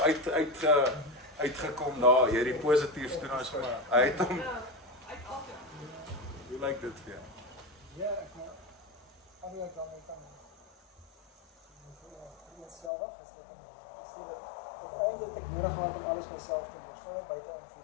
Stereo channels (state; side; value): drops out; right; at 12.9 s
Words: uitgekom daar. Jy het die positief toe nou sommer uit hom. Hoe lyk dit vir jou? Ja, ek maar eigenlijk dan kan zelf is dat eindelijk ik nodig had om alles myself te doen. Gewoon buiten